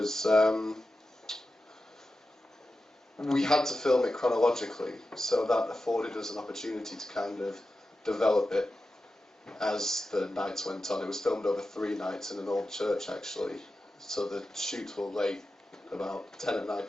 we had to film it chronologically, so that afforded us an opportunity to kind of develop it as the nights went on. It was filmed over 3 nights in an old church, actually, so the shoots were late, about 10 at night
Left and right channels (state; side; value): normal; both; correlation 0.92